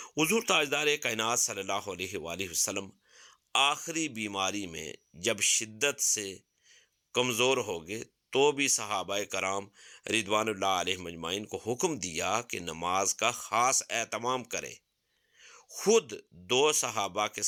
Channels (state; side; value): identical; both; correlation 1.00